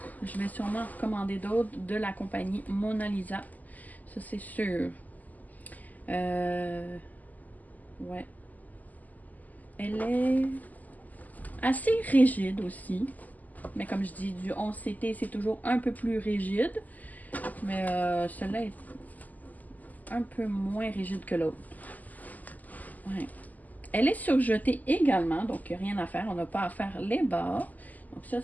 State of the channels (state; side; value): late; right; 0.080 ms